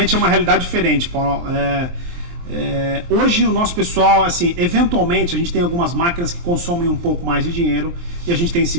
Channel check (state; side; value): late; left; 23 ms